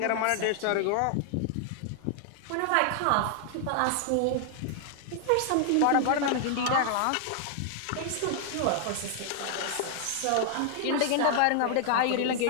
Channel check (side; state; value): both; different; correlation 0.00